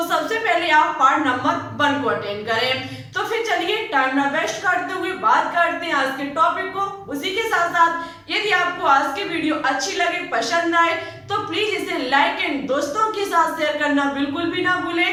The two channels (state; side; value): identical; both; correlation 1.00